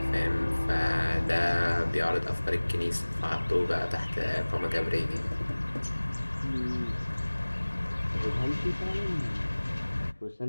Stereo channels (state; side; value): inverted; both; correlation -1.00